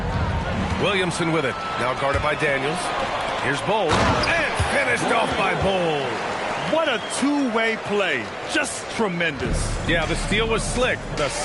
Williamson with it. Now guarded by Daniels. Here's Bol. And finished off by Bol. What a two-way play. Just tremendous. Yeah, the steal was slick. The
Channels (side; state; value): both; identical; correlation 1.00